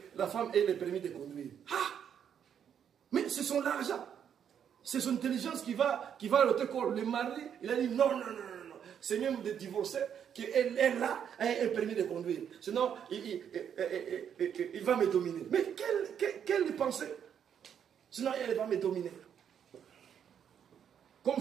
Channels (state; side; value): quieter; left; 8.5 dB